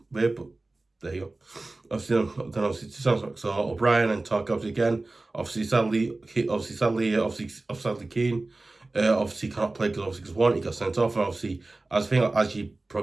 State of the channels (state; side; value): quieter; left; 3.1 dB